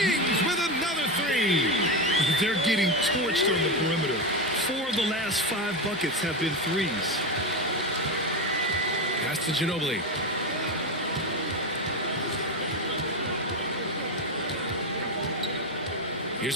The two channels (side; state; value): both; normal; correlation 0.15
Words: with another 3. They're getting torched on the perimeter. 4 of the last 5 buckets have been threes. Pass to Ginobili. Here's